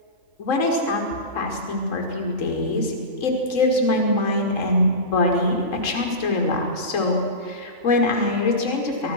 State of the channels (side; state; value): right; late; 3.8 ms